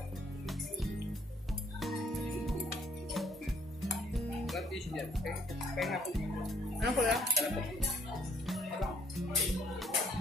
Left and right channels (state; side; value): normal; both; correlation 0.64